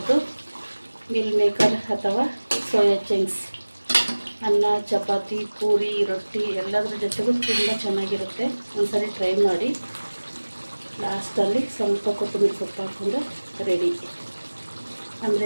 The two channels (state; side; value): inverted; both; correlation -1.00